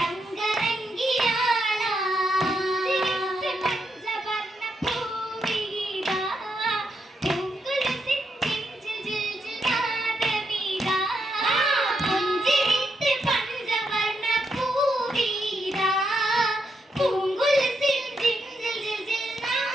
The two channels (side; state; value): both; normal; correlation 0.81